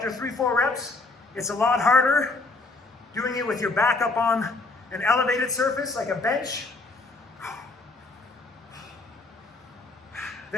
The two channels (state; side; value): quieter; right; 3.4 dB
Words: 3-4 reps, it's a lot harder doing it with your back up on an elevated surface like a bench